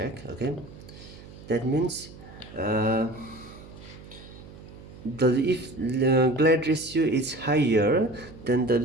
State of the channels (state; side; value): noise; right; hum, 17 dB below the sound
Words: okay. That means uh, the if the glide ratio is higher, then the